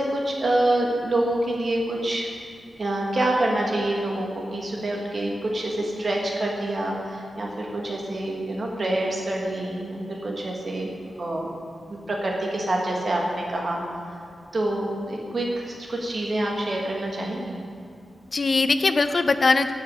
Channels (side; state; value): both; normal; correlation 0.91